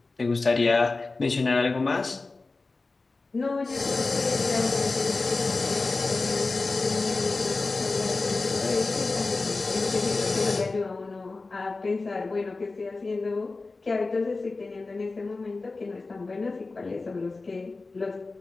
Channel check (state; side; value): quieter; right; 3.6 dB